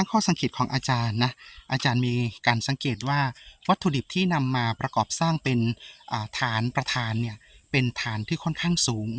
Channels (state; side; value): identical; both; correlation 1.00